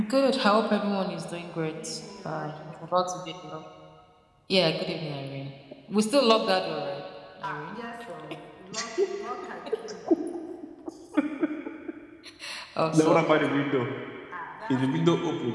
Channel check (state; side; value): identical; both; correlation 1.00